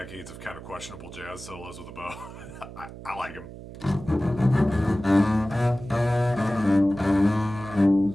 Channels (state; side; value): noise; right; hum, 14 dB below the sound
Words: of kind of questionable jazz solos with a bow. I like them.